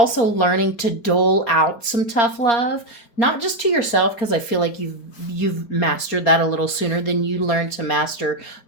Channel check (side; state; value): right; late; 4.3 ms